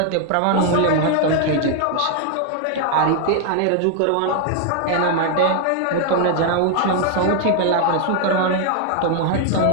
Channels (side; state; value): both; different; correlation 0.00